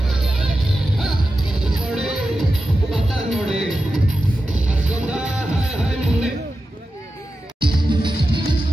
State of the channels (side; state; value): both; normal; correlation 0.92